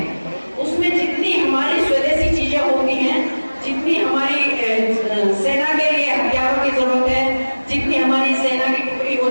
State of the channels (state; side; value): inverted; both; correlation -1.00